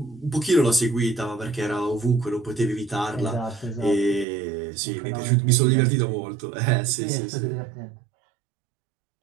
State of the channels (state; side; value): drops out; left; at 4.2 s